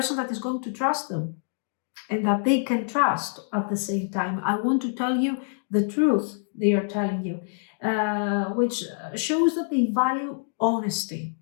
that is going to trust them and that they can trust at the same time. I want to tell you the truth they are telling you, which shows that they value honesty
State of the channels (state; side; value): silent; right; digital silence